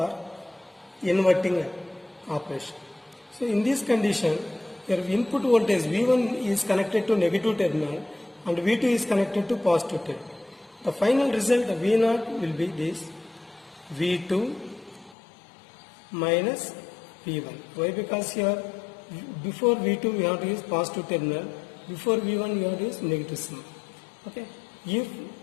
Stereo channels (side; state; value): right; drops out; at 15.2 s